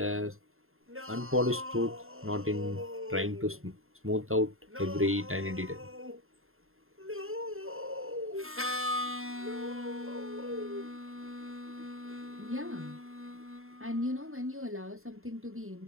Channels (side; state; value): left; late; 0.61 ms